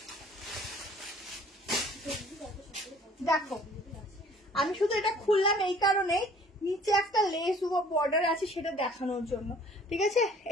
দেখো আমি শুধু এটা খুললাম এই কারণে, নিচে একটা লেস বর্ডার আছে সেটা দেখানোর জন্য, ঠিক আছে।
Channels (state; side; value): normal; both; correlation 0.53